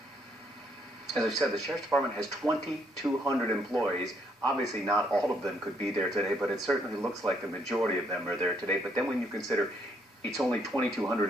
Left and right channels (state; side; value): normal; both; correlation 0.71